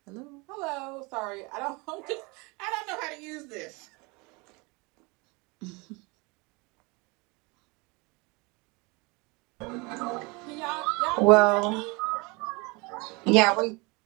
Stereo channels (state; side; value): quieter; left; 27.5 dB